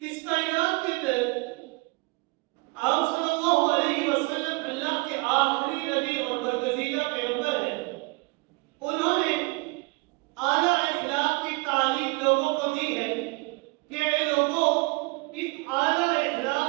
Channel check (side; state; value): left; quieter; 27.1 dB